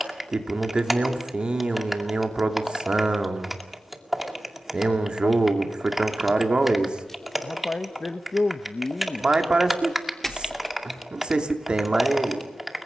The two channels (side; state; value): both; normal; correlation 0.95